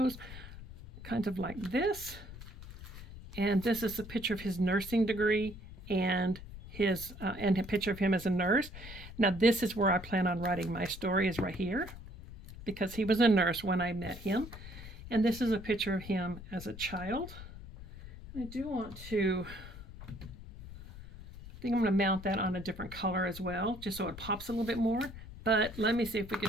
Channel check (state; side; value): noise; left; rumble, 13 dB below the sound